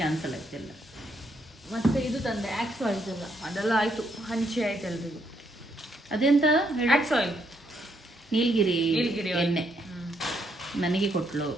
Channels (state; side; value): normal; both; correlation 0.75